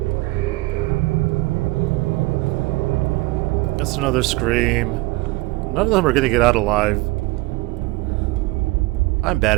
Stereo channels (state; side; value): quieter; left; 21.7 dB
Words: That's another scream. None of them are gonna get out alive. I'm